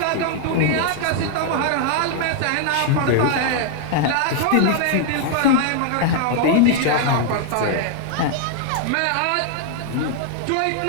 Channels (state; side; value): different; both; correlation 0.00